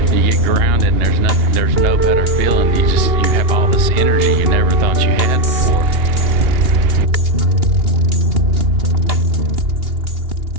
You get grounded and there's nothing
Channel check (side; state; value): left; late; 2.8 ms